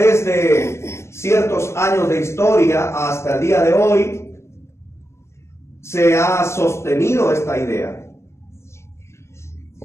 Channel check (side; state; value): right; late; 0.13 ms